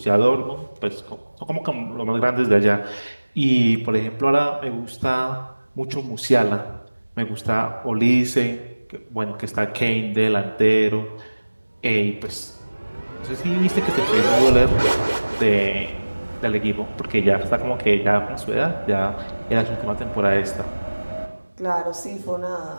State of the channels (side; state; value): both; inverted; correlation -1.00